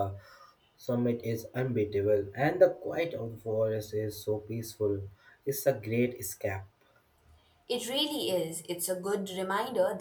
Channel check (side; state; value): both; identical; correlation 1.00